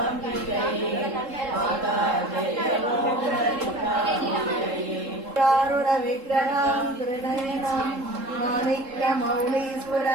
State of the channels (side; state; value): left; late; 3.7 ms